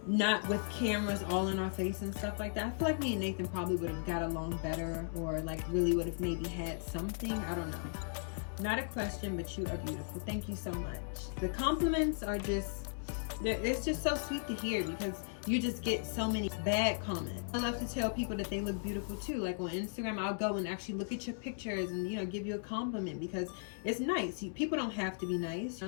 not with cameras all in our face and stuff like that, I feel like me and Nathan probably would have got along better, or like really would have maybe had something. I don't know. Not a question, but you are beautiful. Thank you so much. The compliments are just, it's just so sweet to hear, because you just get so many bad comments. I love to tell people that they look beautiful too. Like on Instagram, I'll go and actually look at your pictures and, you know, give you a compliment, because it's nice. People don't have to be nice, you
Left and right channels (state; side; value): silent; right; 53 dB below the other